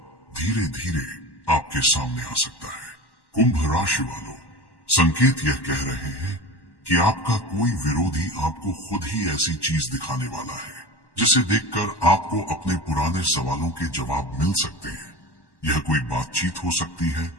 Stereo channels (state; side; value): late; right; 1.1 ms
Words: धीरे धीरे आपके सामने आ सकता है। कुंभ राशि वालों, संकेत यह कह रहे हैं कि आपका कोई विरोधी आपको खुद ही ऐसी चीज दिखाने वाला है जिसे देखकर आपको अपने पुराने सवालों के जवाब मिल सकते हैं। यह कोई बातचीत हो सकती है,